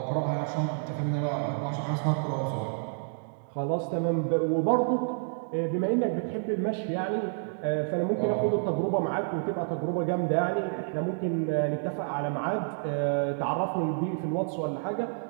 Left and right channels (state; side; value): silent; left; digital silence